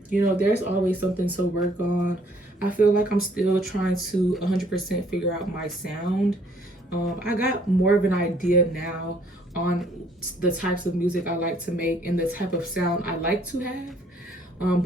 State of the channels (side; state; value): both; normal; correlation 0.62